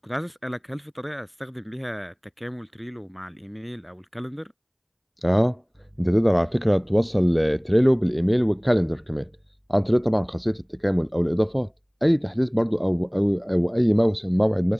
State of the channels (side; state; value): both; identical; correlation 1.00